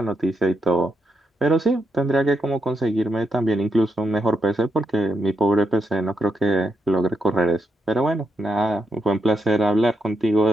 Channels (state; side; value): normal; both; correlation 0.83